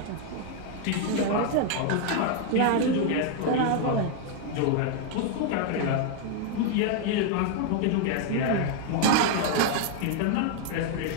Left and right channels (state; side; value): different; both; correlation 0.00